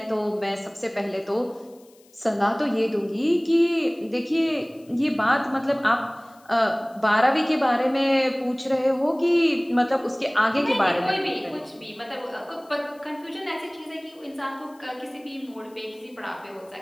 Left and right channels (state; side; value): noise; left; hiss, 30 dB below the sound